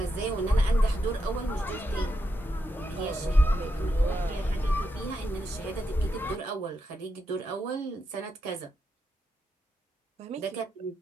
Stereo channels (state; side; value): normal; both; correlation 0.84